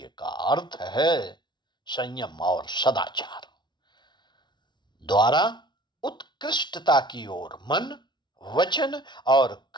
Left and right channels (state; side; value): late; right; 0.21 ms